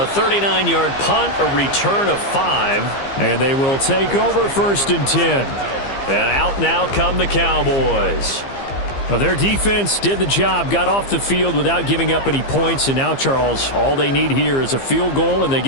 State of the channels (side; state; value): right; late; 15 ms